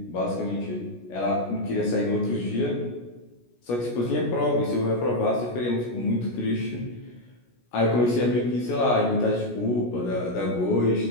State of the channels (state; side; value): late; right; 17 ms